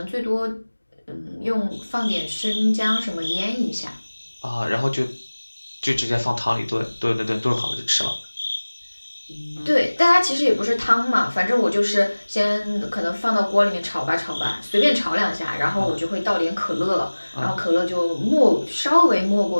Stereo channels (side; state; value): both; inverted; correlation -1.00